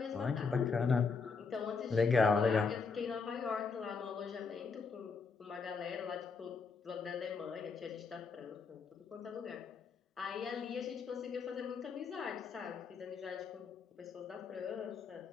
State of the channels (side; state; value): right; quieter; 5.0 dB